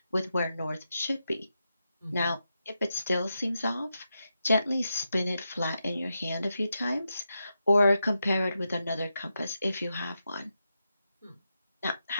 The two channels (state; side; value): inverted; both; correlation -0.87